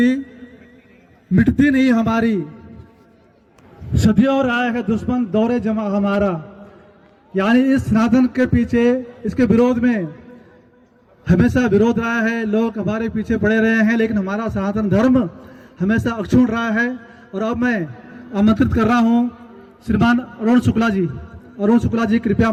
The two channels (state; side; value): identical; both; correlation 1.00